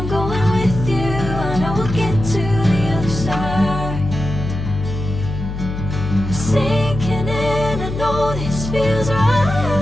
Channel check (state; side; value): noise; left; hum, 6 dB below the sound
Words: going with you, I know we'll get to the other side. Sinking in, I know this feels